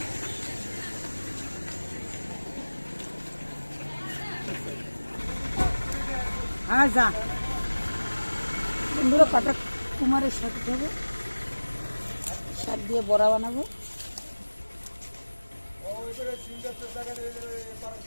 হ্যাঁ যা বন্ধুরা, কটা কুমারের শাক দেবো, শাক দিয়ে বড়া বানাবো।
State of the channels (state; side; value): inverted; both; correlation -1.00